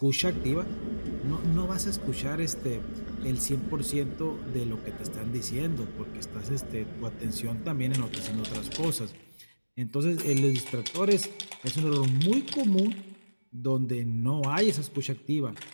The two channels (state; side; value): inverted; both; correlation -1.00